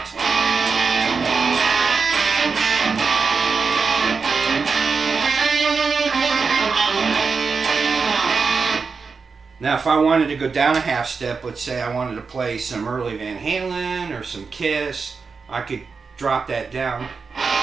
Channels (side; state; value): left; quieter; 5.0 dB